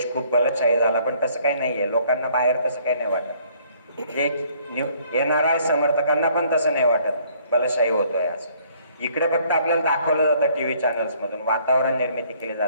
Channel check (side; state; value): both; inverted; correlation -0.62